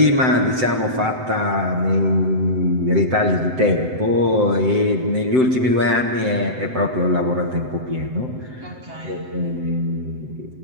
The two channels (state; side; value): late; left; 7.8 ms